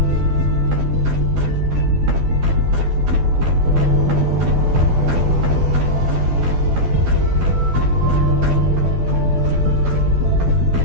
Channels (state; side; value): late; left; 12 ms